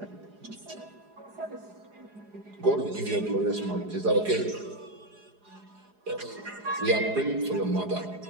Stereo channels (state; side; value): late; left; 4.8 ms